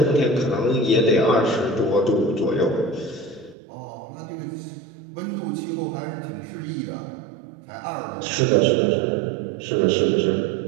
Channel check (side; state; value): left; drops out; at 3.6 s